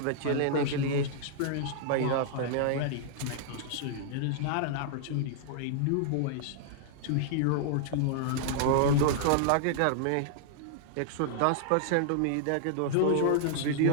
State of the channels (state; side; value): different; both; correlation -0.01